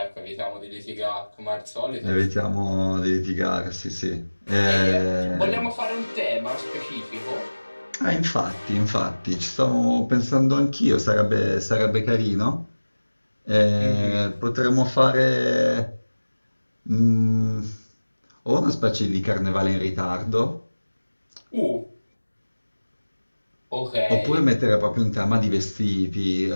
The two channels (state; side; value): inverted; both; correlation -1.00